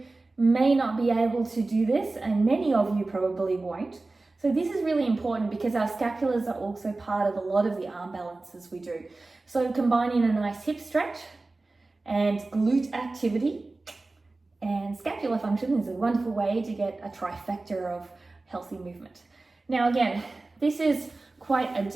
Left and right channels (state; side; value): quieter; left; 3.3 dB